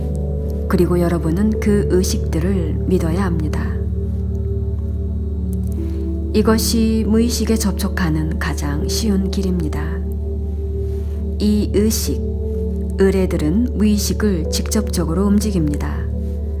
그리고 여러분은 그 의식들을 믿어야 합니다. 이것이 무의식에 접촉하는 가장 쉬운 길입니다. 이 의식, 의뢰들은 무의식을 직접적으로 움직입니다.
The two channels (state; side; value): identical; both; correlation 1.00